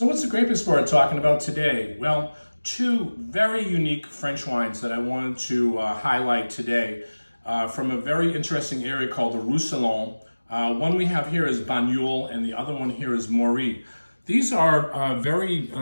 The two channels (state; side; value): inverted; both; correlation -1.00